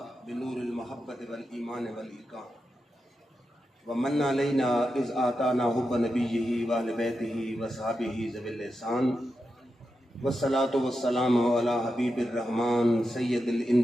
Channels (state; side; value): normal; both; correlation 0.88